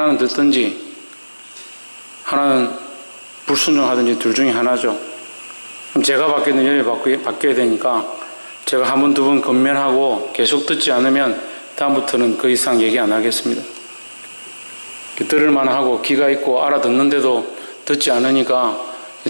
듣든지 하나는 불순종하든지 둘 중에 하나죠. 그럼 제가 받게 되는 열이 바뀌어야 되니까 제가 한 번, 두 번 건면하고 계속 듣지 않으면 다음부터는 그 이상 얘기 안 하겠습니다. 들을만 하고 귀가 있고 알아듣는데도 듣지 않으니까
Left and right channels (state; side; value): inverted; both; correlation -1.00